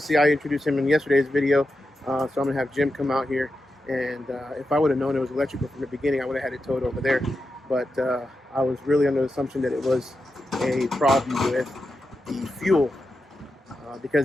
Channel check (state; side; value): normal; both; correlation 0.89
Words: I introduced him in yesterday's video, so I'm going to have Jim come out here. And if I would have known it was electrical from the beginning, I would have had it towed over there. But I was really under the assumption that it was a problem with the fuel,